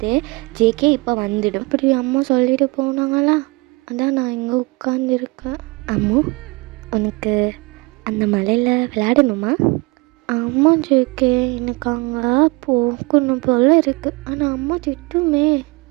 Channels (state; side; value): quieter; left; 26.7 dB